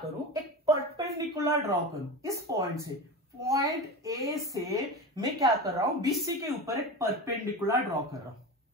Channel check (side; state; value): both; normal; correlation 0.26